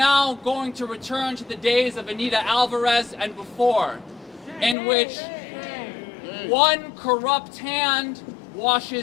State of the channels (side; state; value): right; drops out; at 4.8 s